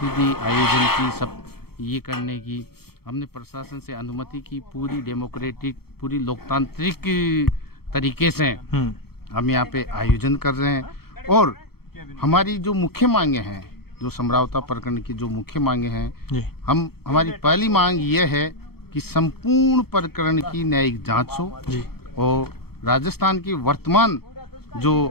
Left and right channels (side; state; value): right; late; 0.95 ms